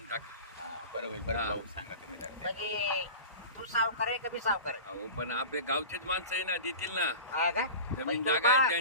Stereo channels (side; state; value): both; inverted; correlation -0.34